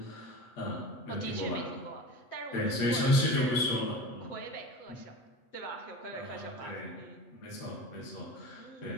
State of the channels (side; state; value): right; late; 8.1 ms